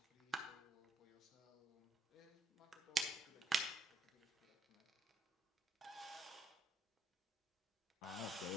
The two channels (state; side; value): normal; both; correlation 0.73